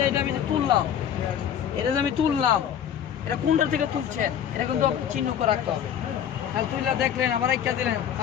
এটা আমি যে তুললাম, এটা কোনটা থেকে তুলছেন, এটা কিন্তু চিহ্ন করে রাখতে হবে। তাহলে তুললা দেখলেন, আবার একটা দিলেন,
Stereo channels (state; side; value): quieter; right; 9.3 dB